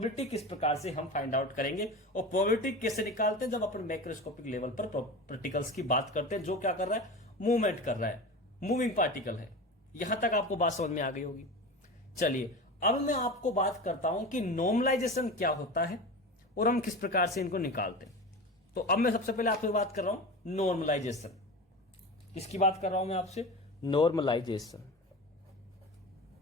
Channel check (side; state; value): both; normal; correlation 0.30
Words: किस प्रकार से हम फाइंड आउट करेंगे और प्रोबेबिलिटी कैसे निकालते हैं जब अपन मैक्रोस्कोपिक लेवल पर पार्टिकल्स की बात करते हैं, जो क्या कर रहा है, मूवमेंट कर रहा है, मूविंग पार्टिकल है। यहां तक आपको बात समझ में आ गई होगी। चलिए अब मैं आपको बात करता हूं कि नॉर्मलाइजेशन क्या होता है और हम किस प्रकार से इनको निकालते हैं। तो अब मैं सबसे पहले आपसे बात कर रहा हूं नॉर्मलाइजेशन। किसकी बात कर रहा हूं मैं आपसे, नॉर्मलाइजेशन।